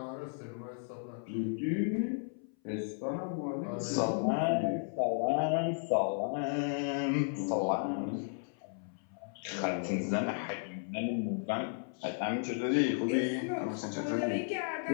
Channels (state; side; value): silent; right; 55 dB below the other